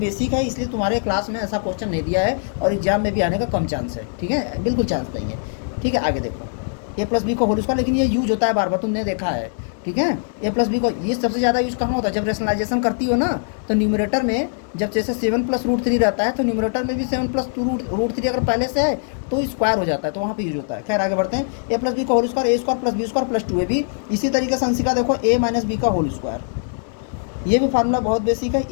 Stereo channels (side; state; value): right; silent; 63 dB below the other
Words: है इसलिए तुम्हारे क्लास में ऐसा क्वेश्चन नहीं दिया है और एग्जाम में भी आने का कम चांस है। ठीक है, बिल्कुल चांस नहीं है। ठीक है, आगे देखो a प्लस बी का होल स्क्वायर, लेकिन ये यूज होता है बार बार, तुमने देखा है। ठीक है, a प्लस बी को ये सबसे ज़्यादा यूज़ कहाँ होता है, जब रेशनलाइजेशन करती हो ना, तो न्यूमरेटर में जब जैसे 7 प्लस √3 रहता है, तो न्यूमरेटर में भी 7 प्लस √3 अगर पहले से है तो स्क्वायर हो जाता है, तो वहाँ पे यूज होता है। खैर आगे बढ़ते हैं, a प्लस बी का whole square a² plus b² plus 2ab। इसी तरीके से अंशिका देखो a माइनस बी का होल स्क्वायर, ये भी फार्मूला बहुत बेसिक है,